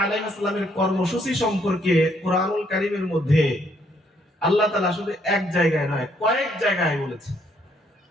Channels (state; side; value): normal; both; correlation 0.70